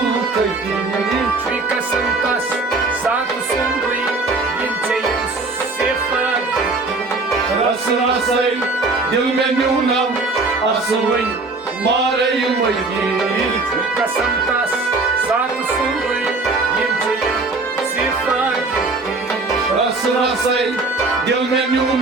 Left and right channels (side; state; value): left; quieter; 3.5 dB